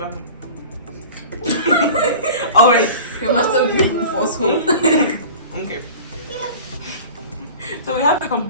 it. All right. You must have been forceful. Okay. So we have a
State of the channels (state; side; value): inverted; both; correlation -0.38